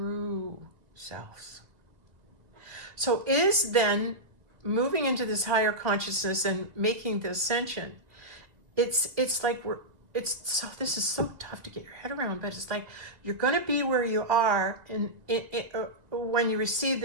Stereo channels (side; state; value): left; late; 2.0 ms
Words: selves. So is then moving into this higher consciousness and making the ascension, it's like this is so tough to get your head around, but it's like you're going to be where you are when you receive